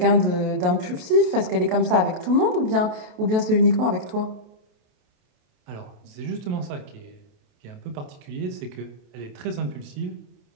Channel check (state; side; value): late; left; 28 ms